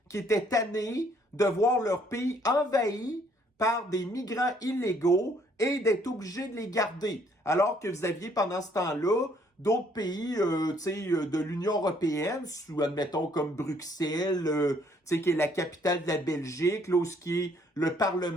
qui étaient tannés de voir leur pays envahi par des migrants illégaux et d'être obligés de les garder. Alors que vous aviez pendant ce temps-là d'autres pays de l'Union européenne, admettons comme Bruxelles, qui est la capitale de la Belgique, là, où ce qui est le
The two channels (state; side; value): normal; both; correlation 0.65